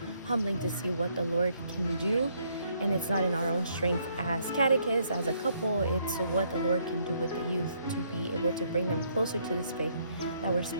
humbling to see what the Lord can do. And it's not in our own strength as catechists, as a couple, it's what the Lord can do with the youth to be able to bring them closer to this faith that we're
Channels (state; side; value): inverted; both; correlation -0.70